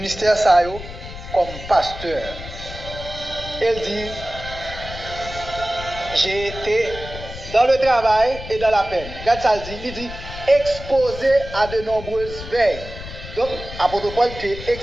ça comme pasteur. Elle dit, j'ai été dans le travail et dans la peine. Regarde ça, il dit, exposé à de nombreuses veilles. Donc, apôtre Paul était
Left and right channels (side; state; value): left; noise; rumble, 11 dB below the sound